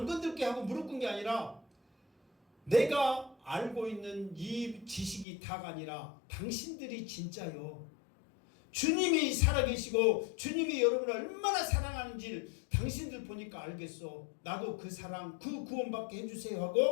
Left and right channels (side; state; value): right; drops out; at 5.2 s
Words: 건들게 하고 무릎 꿇는 게 아니라 내가 알고 있는 이 지식이 다가 아니라 당신들이 진짜요. 주님이 살아계시고 주님이 여러분을 얼마나 사랑하는지 당신들 보니까 알겠어. 나도 그 사랑, 그 구원받게 해주세요